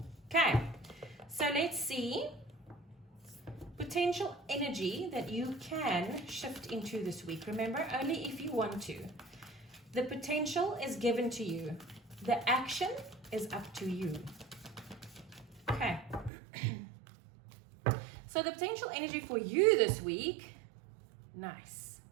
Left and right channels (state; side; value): drops out; left; at 16.3 s